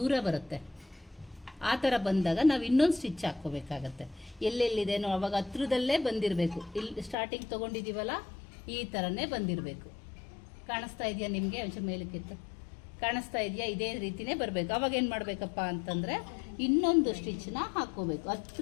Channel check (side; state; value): right; drops out; at 7.2 s